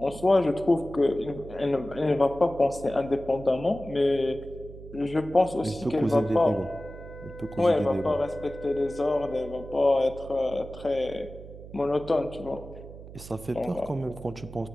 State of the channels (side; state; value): right; noise; hum, 15 dB below the sound